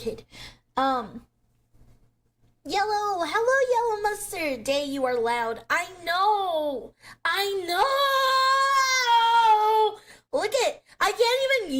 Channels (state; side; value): identical; both; correlation 1.00